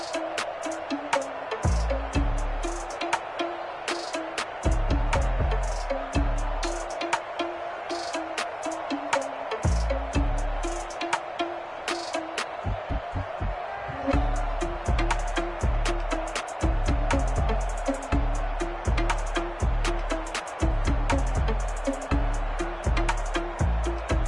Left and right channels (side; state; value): both; identical; correlation 1.00